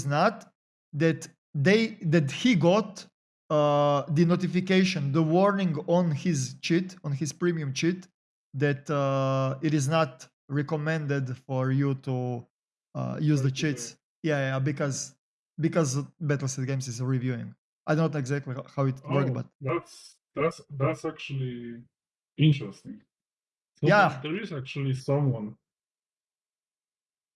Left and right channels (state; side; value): identical; both; correlation 1.00